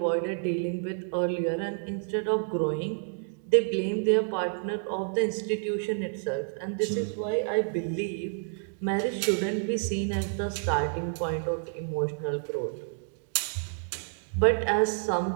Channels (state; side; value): silent; left; 58 dB below the other